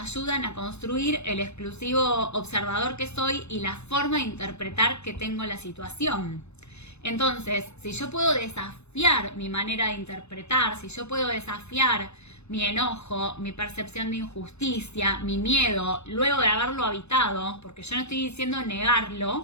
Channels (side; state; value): right; late; 0.81 ms